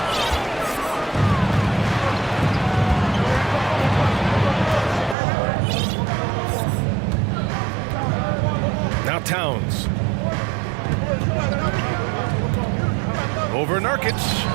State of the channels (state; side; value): drops out; left; at 5.2 s